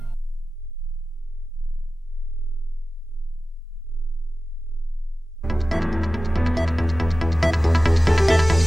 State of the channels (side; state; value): both; normal; correlation 0.95